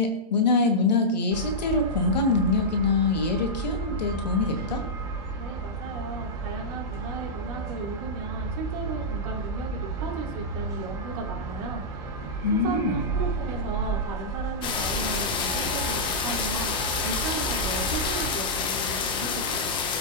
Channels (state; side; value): normal; both; correlation -0.10